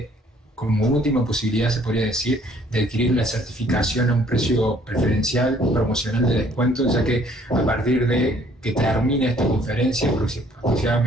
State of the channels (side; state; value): both; normal; correlation 0.61